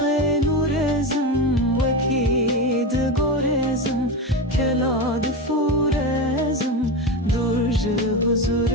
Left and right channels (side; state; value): both; normal; correlation 0.19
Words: نورزم وکید گورزم کلاد فورزم درج